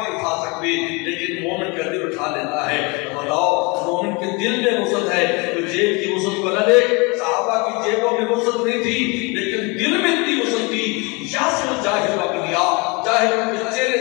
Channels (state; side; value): quieter; right; 28.6 dB